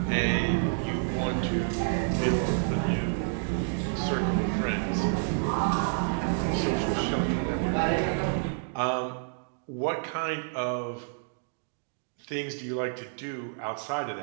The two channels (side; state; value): left; silent; digital silence